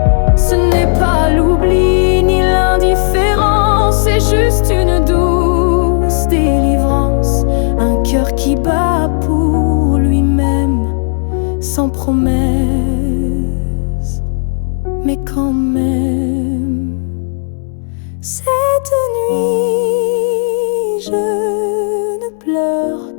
Ce n'est pas l'oubli ni l'indifférence, c'est juste une douce délivrance. Un cœur qui bat pour lui-même, sans promesse, mais quand même. Cette nuit, je ne pleure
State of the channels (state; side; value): silent; right; digital silence